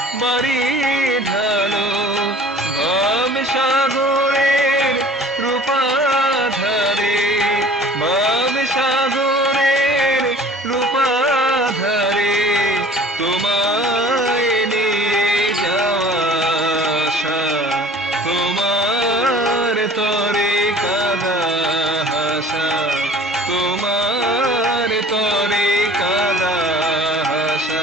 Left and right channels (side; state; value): both; normal; correlation 0.47